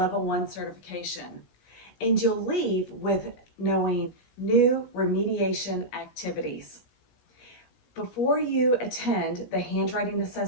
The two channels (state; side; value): late; right; 16 ms